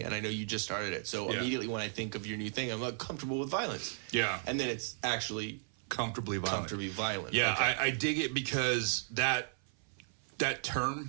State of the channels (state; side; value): silent; left; 54 dB below the other